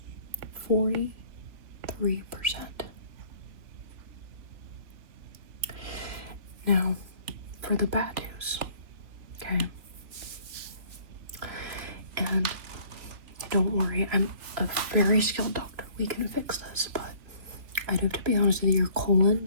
43%. Now, for the bad news, okay? And don't worry, I'm a very skilled doctor. We can fix this, but I do have to be honest with you, your colon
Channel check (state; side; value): late; left; 3.2 ms